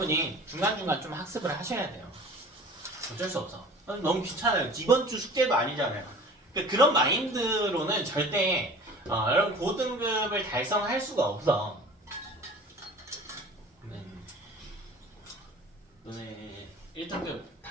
중간중간 좀 학습을 하셔야 돼요. 어쩔 수 없어. 너무 귀찮아요. 이번 주 숙제도 아니잖아요. 그러니까 그런 마인드로는 절대 여러분 고등급을 달성할 수가 없어. 너네 1등급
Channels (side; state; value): both; normal; correlation 0.43